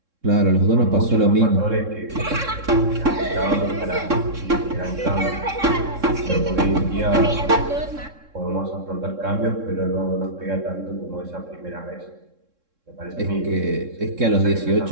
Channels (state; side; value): late; left; 3.7 ms